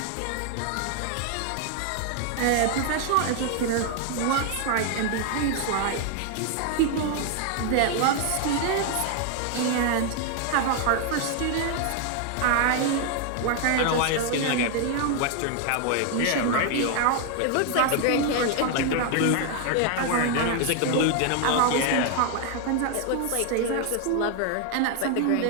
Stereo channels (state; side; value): different; both; correlation 0.00